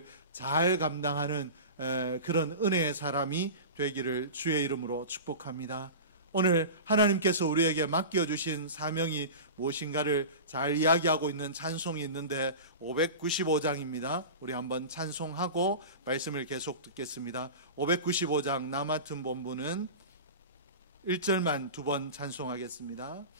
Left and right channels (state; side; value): inverted; both; correlation -0.31